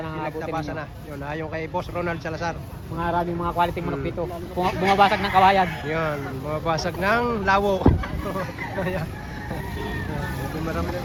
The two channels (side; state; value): both; identical; correlation 1.00